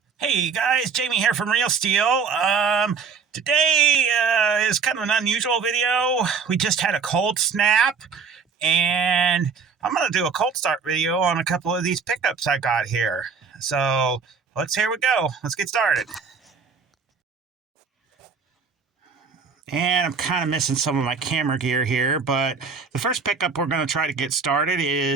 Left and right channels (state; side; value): quieter; left; 5.6 dB